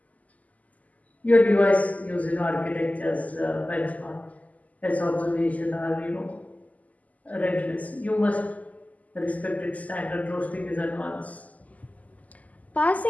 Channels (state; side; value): late; right; 0.075 ms